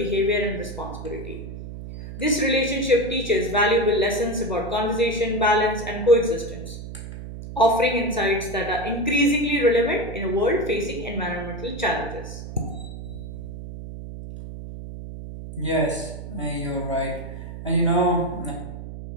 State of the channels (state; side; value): noise; right; hum, 10 dB below the sound